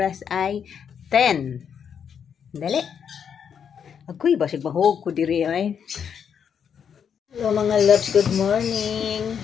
ay 10. Dali. Agoy basig mahog ko diri ay. Hello mga loves, good morning.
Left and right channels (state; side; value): quieter; right; 7.6 dB